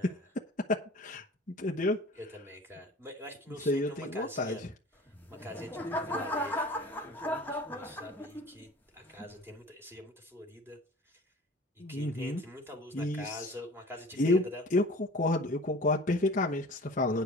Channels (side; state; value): both; normal; correlation 0.43